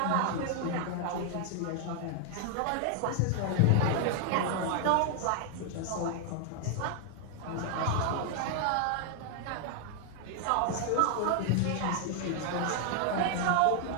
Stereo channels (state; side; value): different; both; correlation 0.00